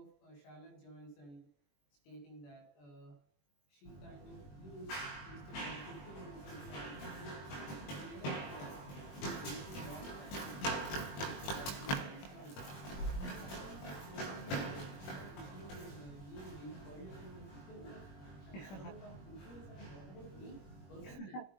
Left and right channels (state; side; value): late; right; 21 ms